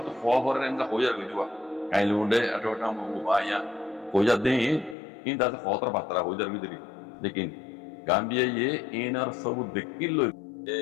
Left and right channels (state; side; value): drops out; right; at 5.0 s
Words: তো ফল করে এন্ড হইয়া গইবা কাইলে উন্ডে আটোটা মো বায়া হইয়া দেই ইন দাতে ফতর বাতরা হইয়া গইদি লেকিন গাম্বিয়া ইয়ে ইনার সব দেখিল এ